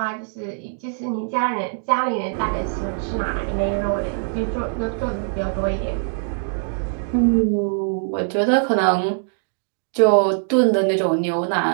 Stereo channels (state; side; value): silent; left; digital silence